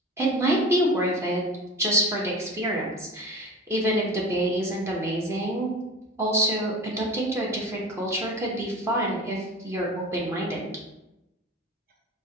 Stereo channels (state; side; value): normal; both; correlation 0.34